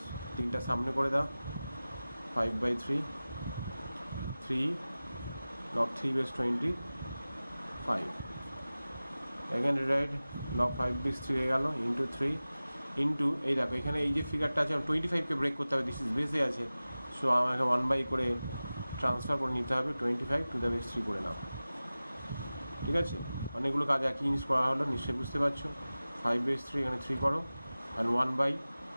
তিনটা সামনে করে দাও, 5 by 3 log 3 base 25, again rewrite log 5 base 3 হয়ে গেল, ইন্টু 3 ইন্টু এই দেখো এখানে এই যে ফিগারটা আছে 25কে ব্রেক করতে হবে, দিস ইজ বেসে আছে, সো আমাকে 1 বাই করে ট্রান্সফার করে নিতে হবে, 25 টু দ্য বেস 3 করে নাও, ঠিক আছে। অনেকগুলো কাজ একই জিনিস করা হলো, নিশ্চয়ই বুঝতে পারছো। 5 বেস 3 এখানে 3 করো, অ্যান্ড 1 বাই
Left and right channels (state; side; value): inverted; both; correlation -0.97